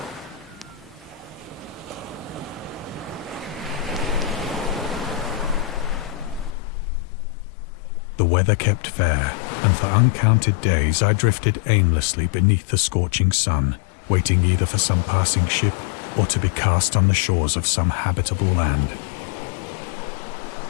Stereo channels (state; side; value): drops out; right; at 6.5 s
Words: The weather kept fair, and for uncounted days I drifted aimlessly beneath the scorching sun, waiting either for some passing ship or to be cast on the shores of some habitable land.